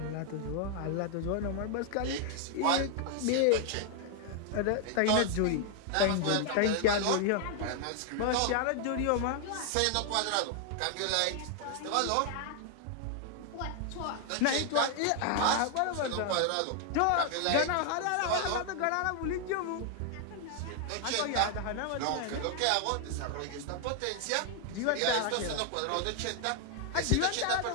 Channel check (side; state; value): both; different; correlation 0.00